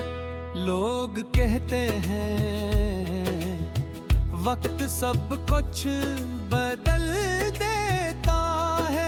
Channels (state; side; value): identical; both; correlation 1.00